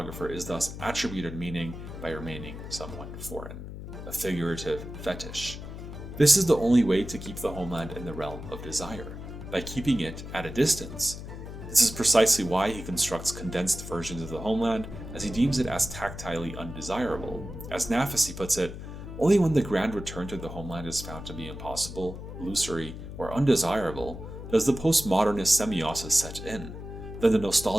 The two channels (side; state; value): left; noise; hum, 10 dB below the sound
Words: is thus attributed meaning by remaining somewhat foreign, a figurative fetish. This is the only way to keep the homeland in the realm of desire, by keeping it at a distance. This is precisely why he constructs condensed versions of the homeland, as he deems it as tactilely undesirable. As Nafisi puts it, only when the grand return to the homeland is found to be impossible, illusory, or undesirable does the postmodernist semiosis set in. Then the